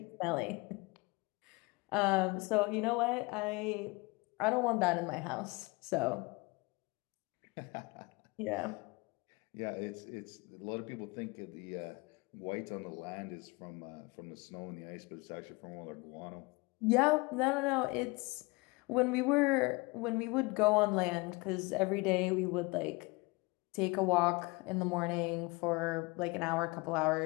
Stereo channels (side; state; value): right; quieter; 25.7 dB